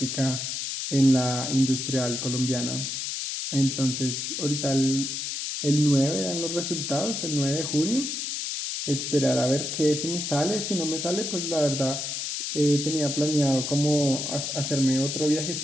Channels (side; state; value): left; noise; hiss, 3 dB below the sound